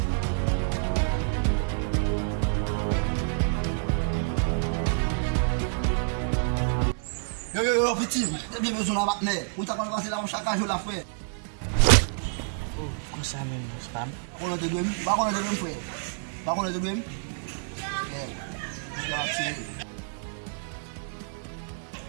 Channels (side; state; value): left; silent; digital silence